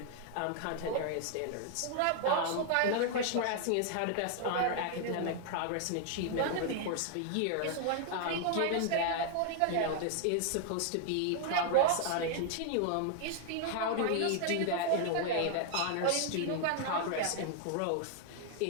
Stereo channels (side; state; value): both; different; correlation 0.00